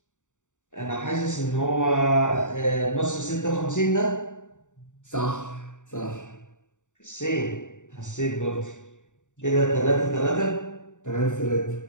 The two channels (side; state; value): right; late; 0.85 ms